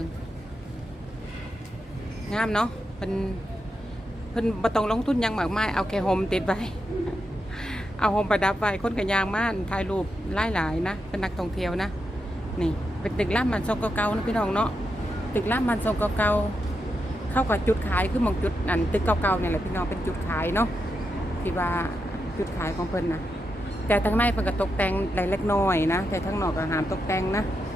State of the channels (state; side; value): normal; both; correlation 0.85